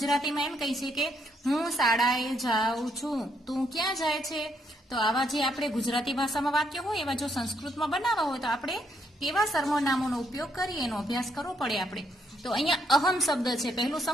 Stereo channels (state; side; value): normal; both; correlation 0.74